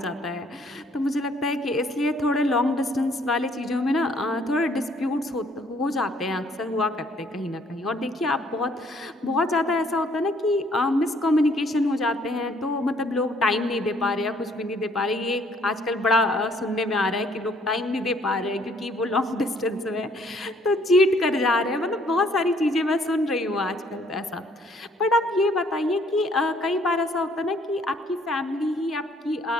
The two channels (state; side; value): normal; both; correlation 0.63